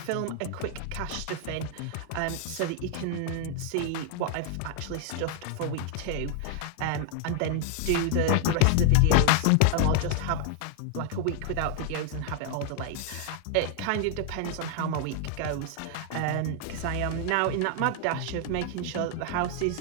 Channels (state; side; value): different; both; correlation 0.00